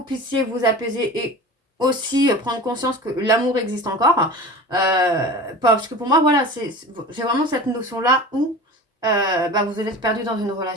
puissiez vous apaiser et aussi prendre conscience que l'amour existe encore. Parce que pour moi, voilà, j'ai vraiment cette notion-là où vous êtes perdu dans une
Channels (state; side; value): normal; both; correlation 0.35